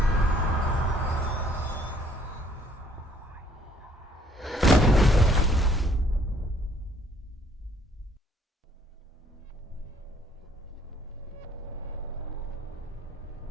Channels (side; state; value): both; normal; correlation 0.62